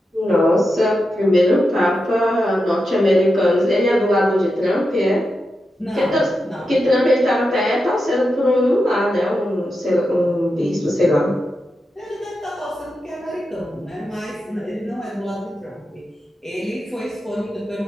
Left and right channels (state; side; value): normal; both; correlation 0.88